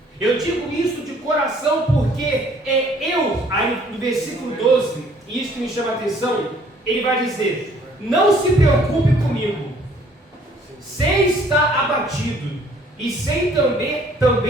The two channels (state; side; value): normal; both; correlation 0.59